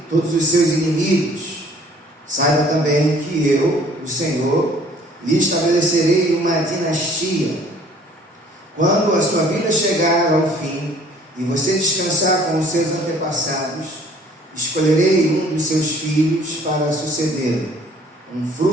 todos os seus inimigos. Saiba também que eu, o Senhor, lhe estabelecerei uma dinastia. Quando a sua vida chegar ao fim e você descansar com os seus antepassados, escolherei um dos seus filhos para suceder, um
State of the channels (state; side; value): normal; both; correlation 0.56